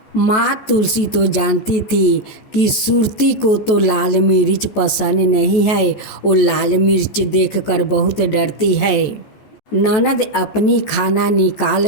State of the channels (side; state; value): right; late; 14 ms